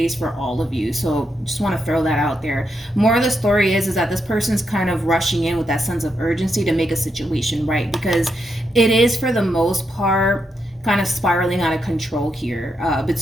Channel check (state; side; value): normal; both; correlation 0.82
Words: for all of you, so just want to throw that out there. More of the story is that this person's kind of rushing in with that sense of urgency to make a situation right, because it is, for the most part, kind of spiraling out of control here